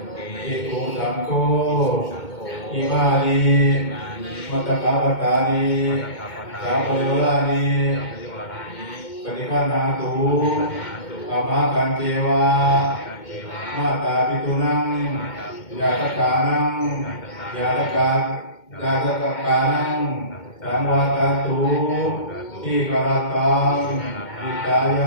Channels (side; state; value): right; late; 2.2 ms